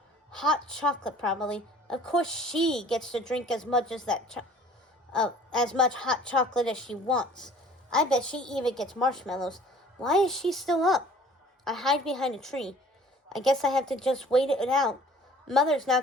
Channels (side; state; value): both; normal; correlation 0.50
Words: Hot chocolate, probably. Of course she gets to drink as much as much hot chocolate as she wants. I bet she even gets marshmallows. Why is she still up? I hide behind a tree. I guess I have to just wait it out. Mother's